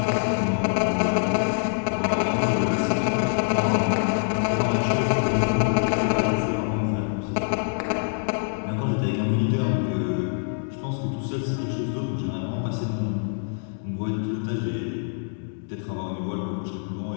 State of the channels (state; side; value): silent; right; digital silence